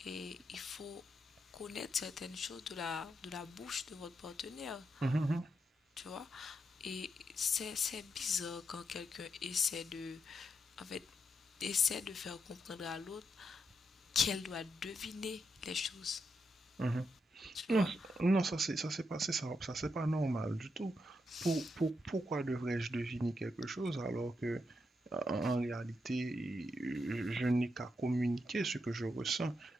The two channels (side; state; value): both; normal; correlation 0.82